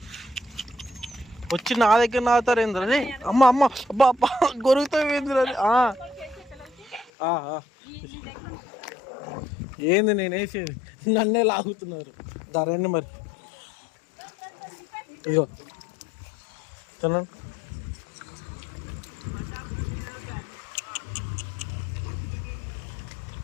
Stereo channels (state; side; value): drops out; right; at 7.1 s